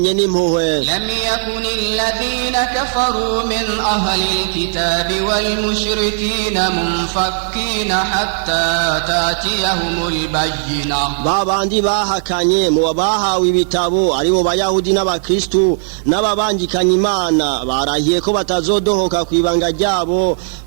n'impuhwe. لم يكن الذين كفروا من أهل الكتاب والمشركين منفكين حتى تأتيهم البينة babandi bahakanye mu bahawe ibitabo aribo bayahudi n'abakristu n'ababangikanye Imana barahiye ko batazodohoka kwibanga ryabo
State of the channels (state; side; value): silent; left; digital silence